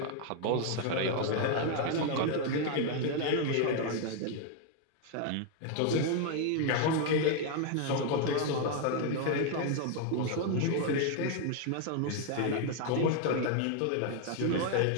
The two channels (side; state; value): both; different; correlation 0.00